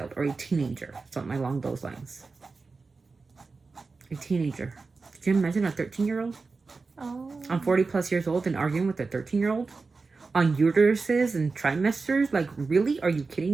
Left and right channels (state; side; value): quieter; left; 4.2 dB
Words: or a teenager, something along those lines. A teenager. Could you imagine a 13-year-old? Oh. I'm 40 plus years old and arguing with a 13-year-old on uteruses and trimesters. Like, really? Are you